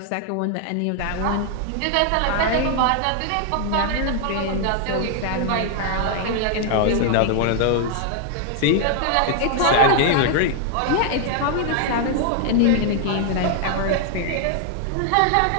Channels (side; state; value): both; different; correlation 0.00